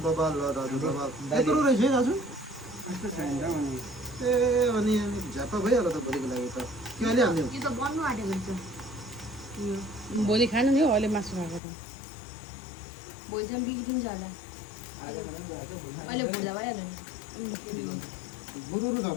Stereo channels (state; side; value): drops out; right; at 11.6 s